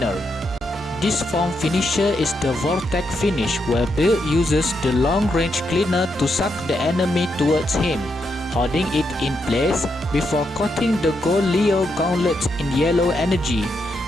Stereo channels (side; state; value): both; normal; correlation 0.81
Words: This form finisher is the Vortex finish, where Bill uses the long-range cleaner to suck the enemy towards him, holding it in place before coating the gold Leo gauntlet in yellow energy,